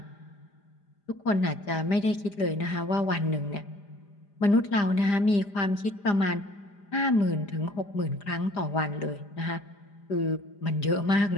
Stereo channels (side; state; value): right; late; 5.0 ms